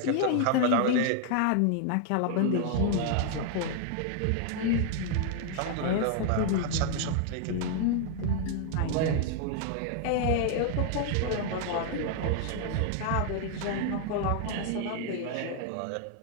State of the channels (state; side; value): different; both; correlation 0.00